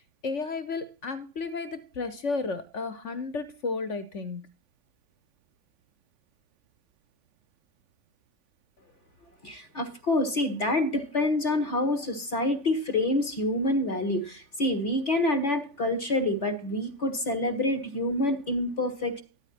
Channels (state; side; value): late; right; 3.7 ms